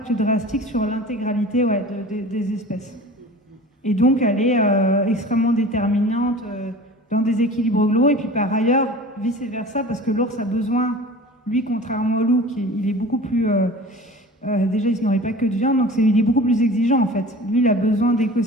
drastique sur l'intégralité des espèces. Et donc elle est extrêmement déterminante dans des équilibres globaux, et puis par ailleurs, vice-versa, parce que l'ours a besoin, lui, contrairement au loup, il est beaucoup plus... déjà, il ne se nourrit pas que de viande, donc il est beaucoup plus exigeant en fait. Lui, il a besoin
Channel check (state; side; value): normal; both; correlation 0.39